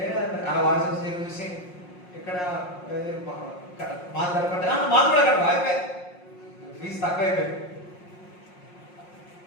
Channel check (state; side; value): late; right; 5.6 ms